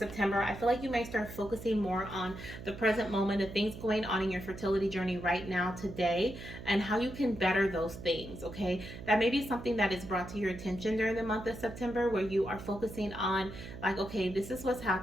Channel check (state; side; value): noise; right; hum, 12 dB below the sound